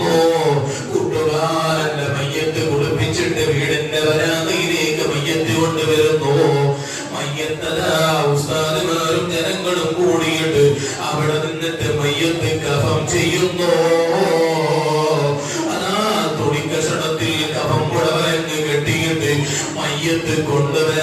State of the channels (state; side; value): identical; both; correlation 1.00